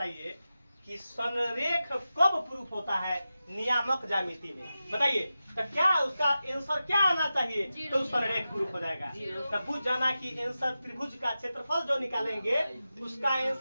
कि संरेख कब प्रूफ होता है नियामक ज्यामिति में? बताइए तो क्या उसका आंसर क्या आना चाहिए तो संरेख प्रूफ हो जाएगा। तब बुझ जाना कि आंसर त्रिभुज का क्षेत्रफल जो निकालेंगे उसका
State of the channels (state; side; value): inverted; both; correlation -0.93